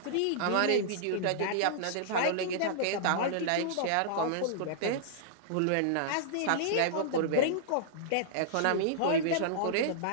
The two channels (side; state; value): both; different; correlation -0.02